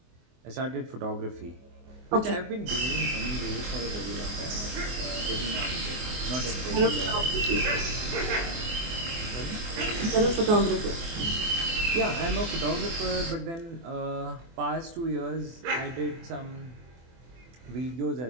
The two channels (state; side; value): late; left; 24 ms